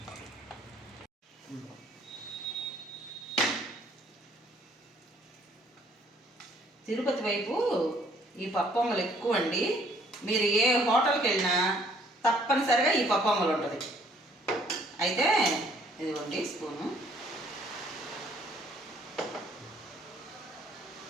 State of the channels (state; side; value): normal; both; correlation 0.62